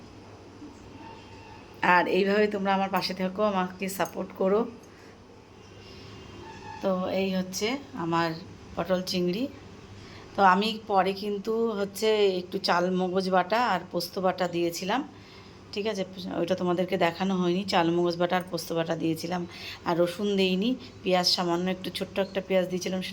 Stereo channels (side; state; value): both; identical; correlation 1.00